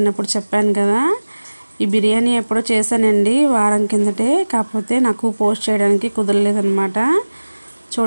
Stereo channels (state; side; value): inverted; both; correlation -1.00